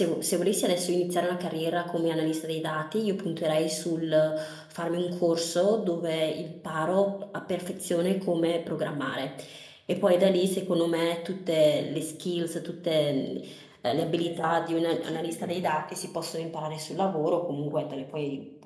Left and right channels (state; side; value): identical; both; correlation 1.00